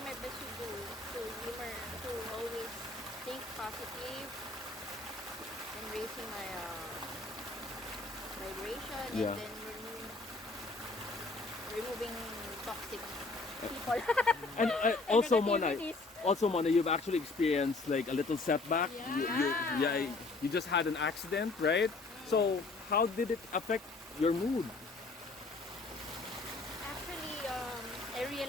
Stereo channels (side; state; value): right; quieter; 3.5 dB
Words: my best to humor, to always think positive and raising my vibration Yeah. and then removing toxic people. And also, Mona, Negativities. you've actually experienced like a little setback. You just had an accident, right? So how did it affect your mood? Actually, I